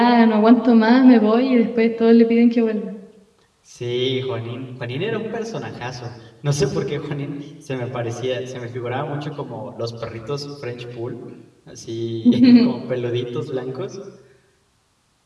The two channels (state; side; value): identical; both; correlation 1.00